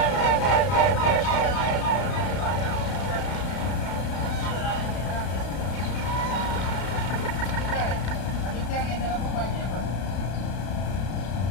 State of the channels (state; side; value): late; right; 32 ms